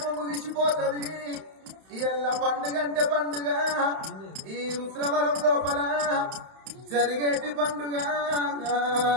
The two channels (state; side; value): late; left; 31 ms